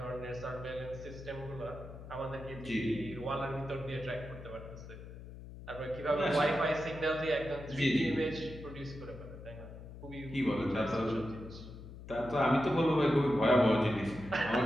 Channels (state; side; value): noise; left; hum, 13 dB below the sound